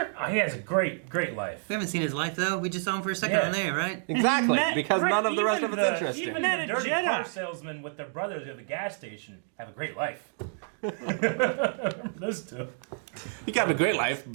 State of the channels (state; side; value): silent; left; 58 dB below the other